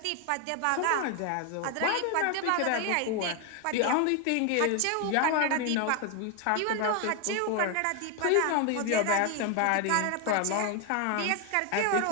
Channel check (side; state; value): both; different; correlation 0.01